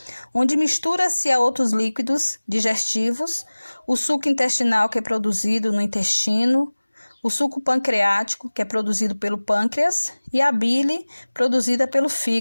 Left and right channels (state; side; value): inverted; both; correlation -1.00